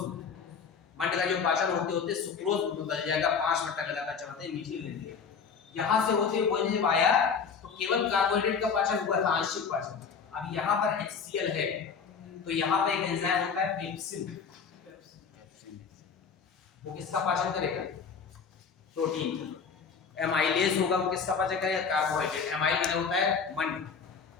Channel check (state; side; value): quieter; right; 6.0 dB